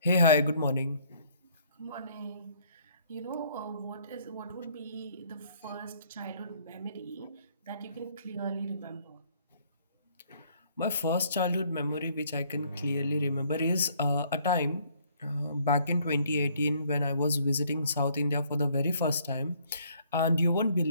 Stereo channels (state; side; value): inverted; both; correlation -0.63